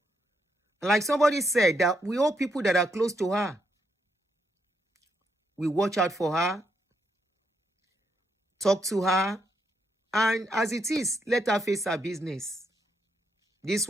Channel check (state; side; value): normal; both; correlation 0.78